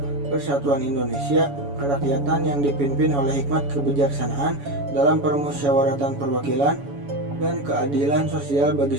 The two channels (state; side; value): late; left; 7.1 ms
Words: persatuan Indonesia, kerakyatan yang dipimpin oleh hikmat kebijaksanaan dalam permusyawaratan perwakilan, dan keadilan sosial bagi